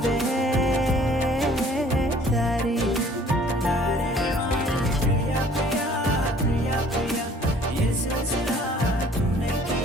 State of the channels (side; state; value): both; normal; correlation 0.54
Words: దారి దారే ప్రియా ప్రియా ప్రియా ప్రియా ये सिलसिला तूने